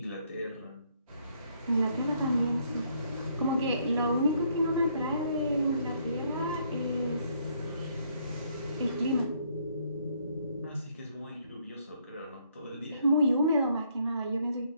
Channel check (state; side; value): inverted; both; correlation -0.69